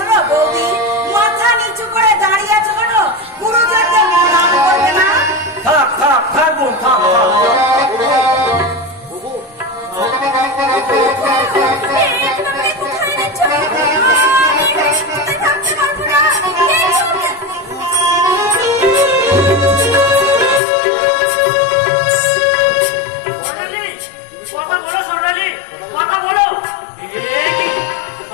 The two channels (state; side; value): drops out; right; at 20.6 s